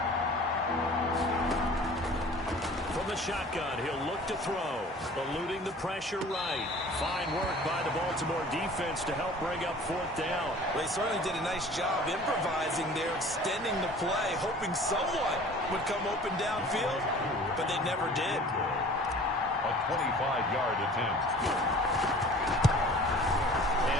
From the shotgun, he'll look to throw. Eluding the pressure right. Fine work by the Baltimore defense to help bring up 4th down. Well, they certainly did a nice job improvising there, extending the play, hoping someone would come open downfield, but they never did. A 25-yard attempt.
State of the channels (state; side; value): normal; both; correlation 0.46